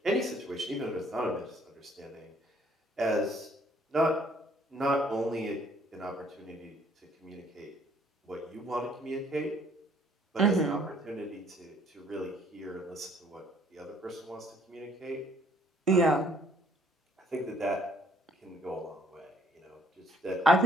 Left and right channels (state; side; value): normal; both; correlation 0.62